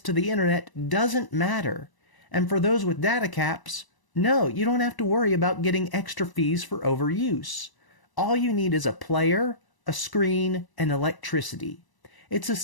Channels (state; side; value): late; right; 1.0 ms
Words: to the internet doesn't matter. And for those with data caps, no, you don't have to worry about getting extra fees for overuse. All you need is a player, a screen, and electricity. It's a